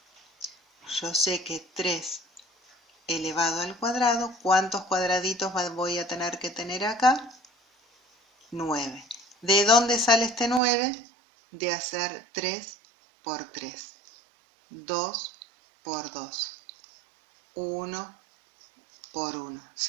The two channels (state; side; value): drops out; left; at 10.6 s